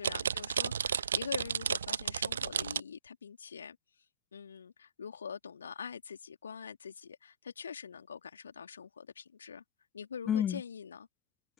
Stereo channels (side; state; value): both; inverted; correlation -0.49